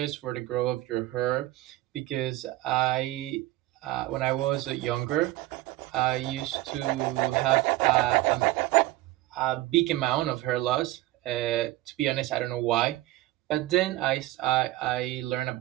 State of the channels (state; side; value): quieter; left; 17.4 dB